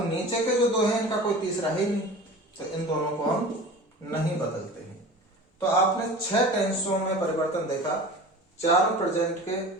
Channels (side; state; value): both; normal; correlation 0.37